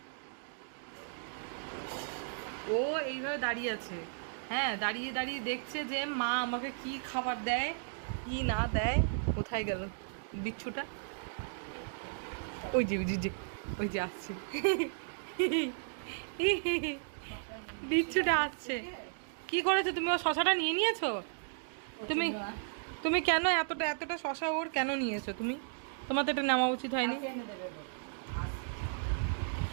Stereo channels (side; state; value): left; silent; digital silence